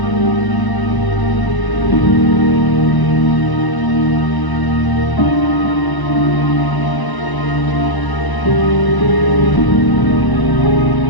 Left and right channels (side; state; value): right; late; 1.0 ms